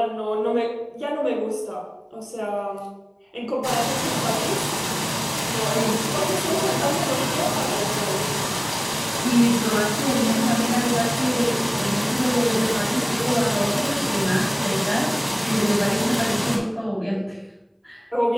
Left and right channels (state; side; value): identical; both; correlation 1.00